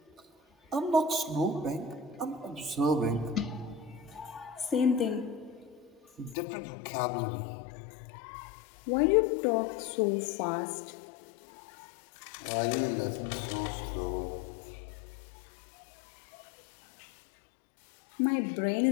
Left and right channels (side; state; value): right; drops out; at 6.4 s